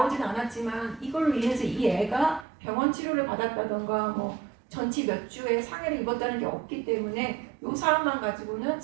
않았지만 이걸로 인해서 이 애가 병원 치료를 받았다던가 뭐 전치 몇 주에 상해를 입었다는 게 없기 때문에 이 사안만 가지고는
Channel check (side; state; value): left; drops out; at 2.5 s